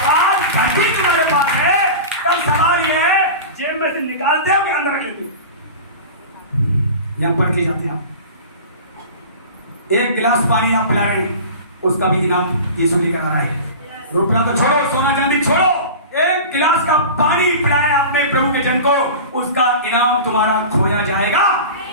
आज घटी तुम्हारे पास है, तब सवाल ये है जेब में से निकालते हो कि अंदर रख लेते हो? यहां पढ़ के जाते हैं आप। एक गिलास पानी आप पिला रहे हैं, उसका भी इनाम यीशु लेकर आ रहा है। रुपया तो छोड़ो, सोना चांदी छोड़ो, एक गिलास का पानी पिलाया आपने प्रभु के जन को, उसका इनाम तुम्हारा खोया जाएगा?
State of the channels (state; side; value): inverted; both; correlation -0.33